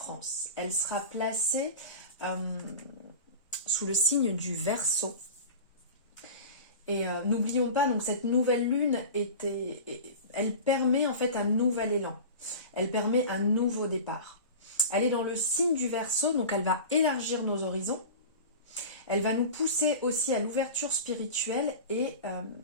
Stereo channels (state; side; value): inverted; both; correlation -0.32